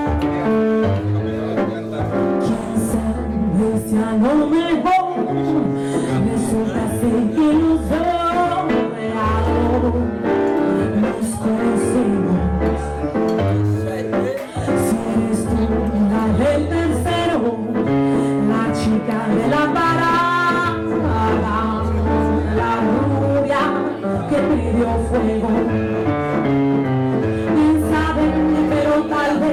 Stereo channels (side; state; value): both; identical; correlation 1.00